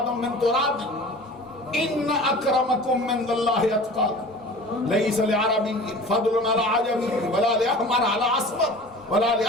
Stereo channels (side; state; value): both; normal; correlation 0.41